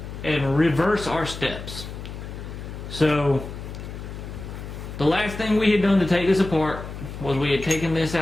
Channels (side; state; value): left; noise; hum, 10 dB below the sound